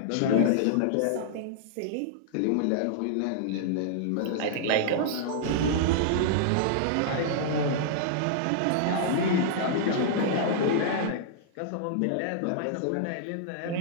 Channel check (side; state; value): both; different; correlation -0.01